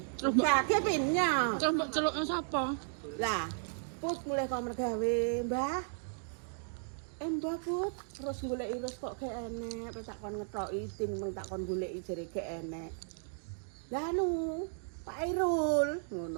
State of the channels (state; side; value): silent; left; digital silence